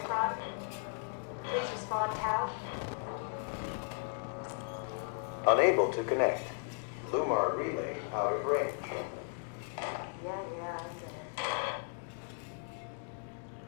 Please respond, Tau. Unable to connect. Lumar relay out of range. Yeah, I get it.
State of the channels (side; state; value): right; silent; 54 dB below the other